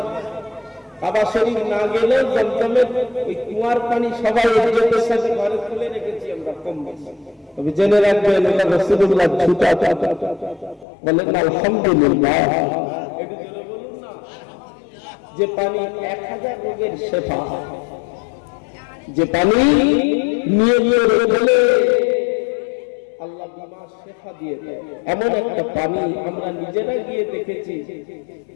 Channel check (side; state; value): right; drops out; at 10.9 s